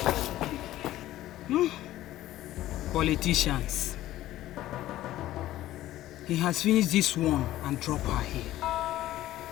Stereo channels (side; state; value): right; quieter; 14.7 dB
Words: Politicians. He has finished this one and dropped her here.